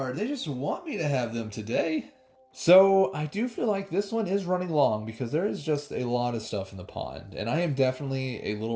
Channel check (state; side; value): identical; both; correlation 1.00